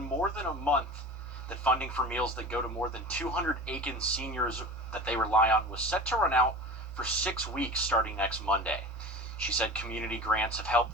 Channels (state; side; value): normal; both; correlation 0.35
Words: more than a month that funding for meals that go to more than 200 Aiken seniors that they rely on was set to run out for 6 weeks starting next Monday. She said community grants have helped